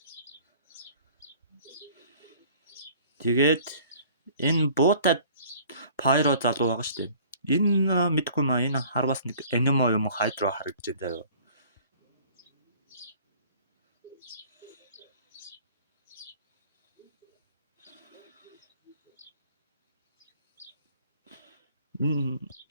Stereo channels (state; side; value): inverted; both; correlation -0.51